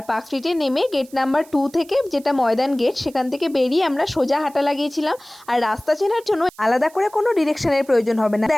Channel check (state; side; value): noise; right; hiss, 25 dB below the sound